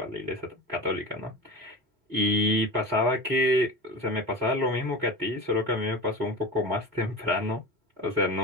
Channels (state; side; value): late; left; 4.0 ms